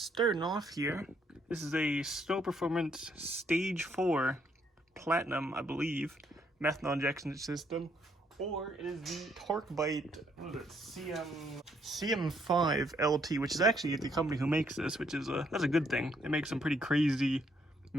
off here, this is a Snow Performance Stage 4 Platinum, I believe, methanol injection system. Or it is the Torque Bite, what is it, CM5 LT, which is actually the company who makes this, which is that's a good thing. They make some pretty crazy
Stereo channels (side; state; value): both; normal; correlation 0.71